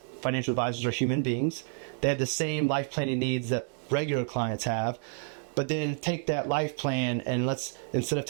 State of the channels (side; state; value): left; silent; 58 dB below the other